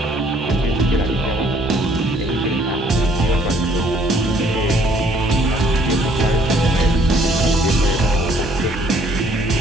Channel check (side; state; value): both; normal; correlation 0.62